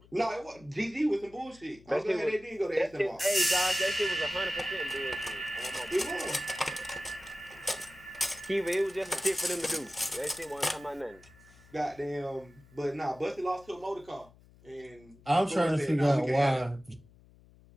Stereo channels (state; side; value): noise; left; hum, 25 dB below the sound